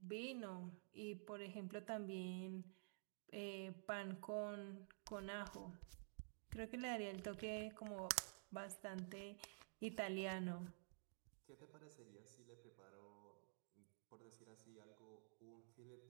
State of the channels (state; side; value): silent; left; digital silence